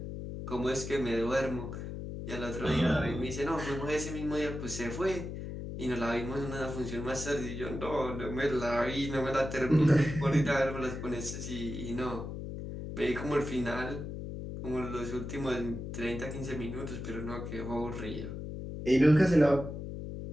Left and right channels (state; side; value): noise; left; hum, 7 dB below the sound